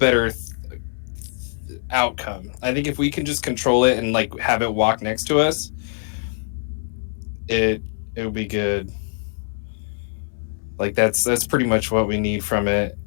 outcome. I think if we can just control it and like have it walk next to us, it'll be good. Like that's pretty much what we need from it.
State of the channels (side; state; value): right; silent; 63 dB below the other